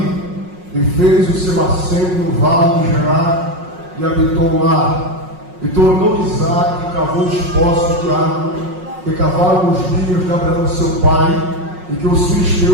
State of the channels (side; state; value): left; late; 5.5 ms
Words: e fez o seu assento no vale de Gerar e habitou lá. E tornou Isaque e cavou os poços de água que cavaram nos dias de Abraão seu pai, e que os